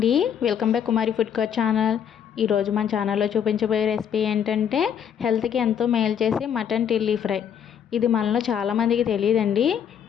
welcome back కుమారి food court channel. ఈరోజు మన ఛానల్లో చూపించబోయే రెసిపీ ఏంటంటే హెల్త్కి ఎంతో మేలు చేసే మటన్ టిల్లీ ఫ్రై. ఇది మనలో చాలామందికి తెలియదండి.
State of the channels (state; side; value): quieter; right; 8.5 dB